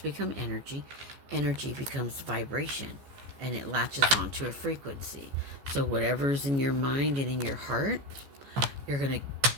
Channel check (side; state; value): left; late; 14 ms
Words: become energy, energy becomes vibration, and it latches onto a frequency. So whatever's in your mind and in your heart, you're gonna